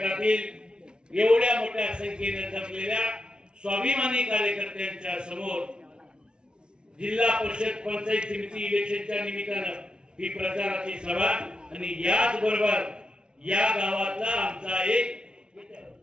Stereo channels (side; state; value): left; late; 0.055 ms